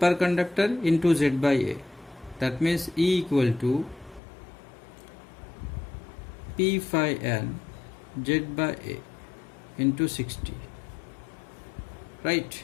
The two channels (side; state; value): right; drops out; at 4.2 s